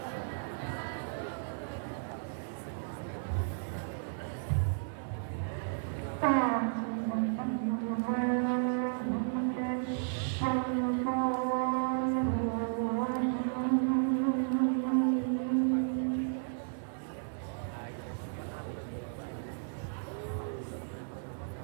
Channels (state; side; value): silent; left; 55 dB below the other